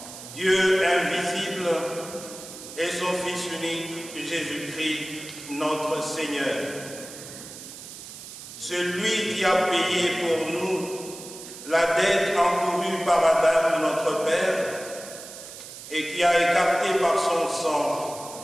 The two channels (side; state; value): right; noise; hiss, 13 dB below the sound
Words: Dieu invisible et son Fils unique, Jésus-Christ, notre Seigneur. Celui qui a payé pour nous la dette encourue par Adam, notre Père, et qui a écarté par son